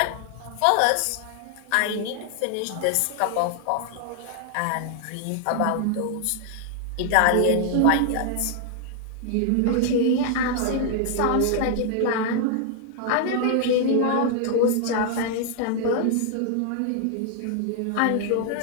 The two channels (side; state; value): both; different; correlation 0.00